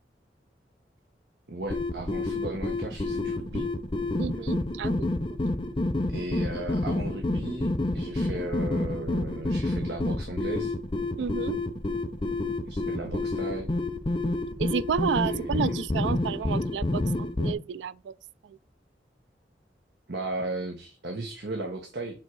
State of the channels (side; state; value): both; normal; correlation 0.62